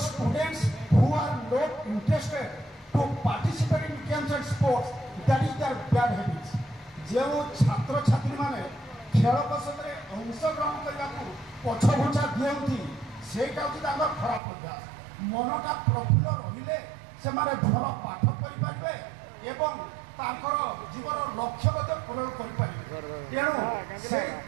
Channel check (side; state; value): left; drops out; at 14.4 s